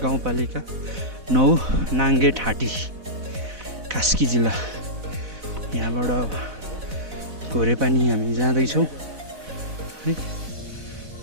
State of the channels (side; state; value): left; late; 4.0 ms